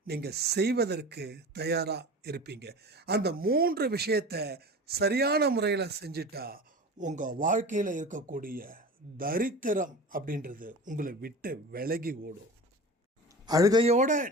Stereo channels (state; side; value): normal; both; correlation 0.34